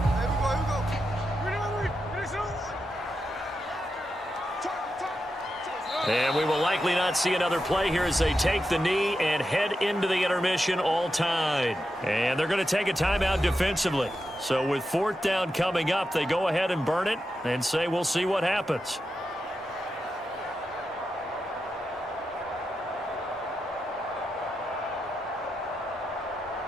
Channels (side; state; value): both; normal; correlation 0.88